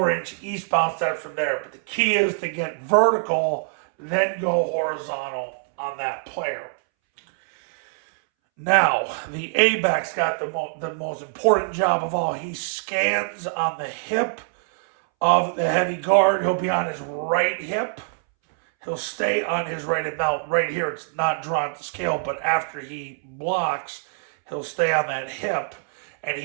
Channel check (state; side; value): silent; left; 63 dB below the other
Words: eastbound steps from there. But the key is to get vertical, then go horizontal on that player. Now, the A-back's got the most important job of all. He scans on the hip of the heavy guard. He'll be on his right hip. He'll stay on his right hip. Now, right here, it's not drawn to scale, but after he blocks, he'll stay on that hip. And